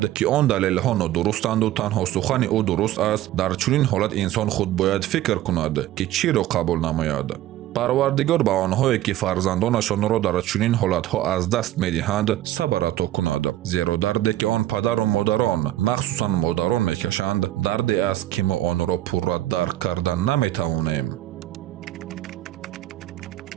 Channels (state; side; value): quieter; left; 14.1 dB